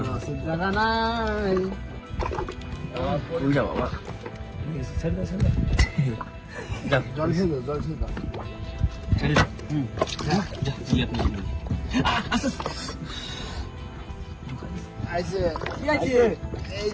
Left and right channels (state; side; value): identical; both; correlation 1.00